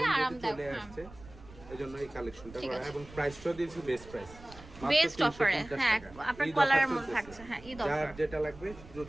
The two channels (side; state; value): right; noise; rumble, 19 dB below the sound